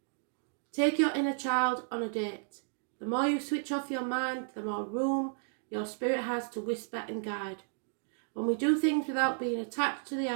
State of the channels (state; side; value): silent; left; digital silence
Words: Take your inner child on a date. The more you switch off your mind, the more room your spirit has to whisper and guide. When we do things without being attached to the